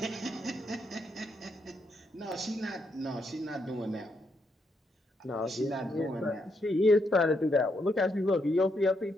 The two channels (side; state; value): both; normal; correlation 0.78